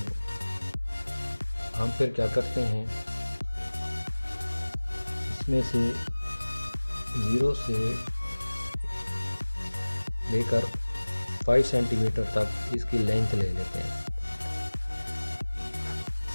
हम फिर क्या करते हैं, इसमें से 0 से लेकर 5 सेंटीमीटर तक इसकी लेंथ ले लेते हैं।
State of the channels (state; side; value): inverted; both; correlation -1.00